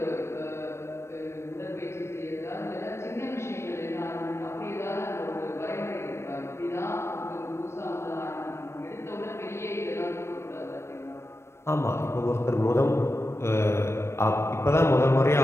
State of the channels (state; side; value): late; right; 0.13 ms